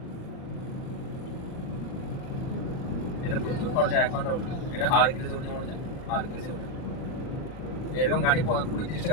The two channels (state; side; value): late; right; 39 ms